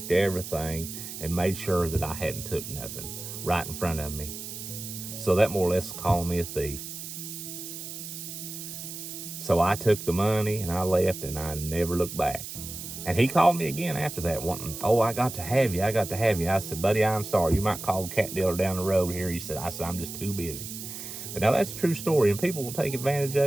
everything and made sure that I hadn't took nothing right in front of me. So that more or less called me a thief. So I took the money and I left, and I never looked back. And he called me again after that, wanting, oh, I got to have you. I said, buddy, I'm sorry. You might call the cat dealer down the road here. I said, I'm just too busy. But now that's a true story, and people will take advantage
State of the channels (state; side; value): noise; right; hiss, 9 dB below the sound